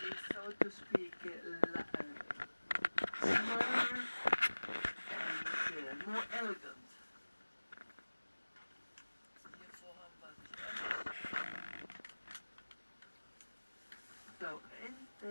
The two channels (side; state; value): both; inverted; correlation -1.00